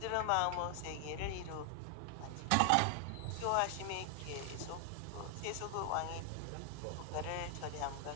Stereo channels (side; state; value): both; different; correlation 0.00